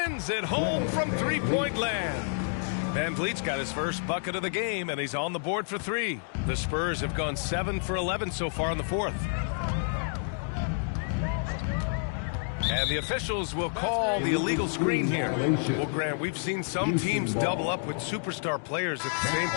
it home from three-point land. Van Vliet's got his first bucket of the game, and he's on the board for 3. The Spurs have gone 7 for 11 so far in the fourth. And the officials will call the illegal screen here. Well, Grant, we've seen some teams double up with superstar players at the same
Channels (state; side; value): silent; right; 58 dB below the other